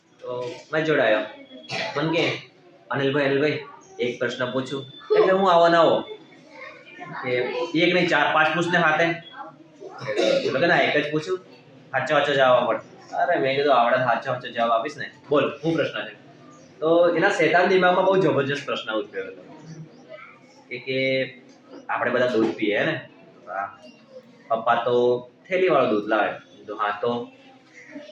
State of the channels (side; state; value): both; identical; correlation 1.00